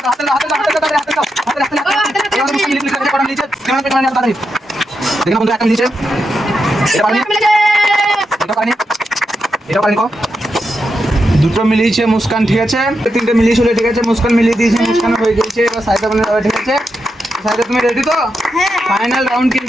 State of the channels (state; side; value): normal; both; correlation 0.85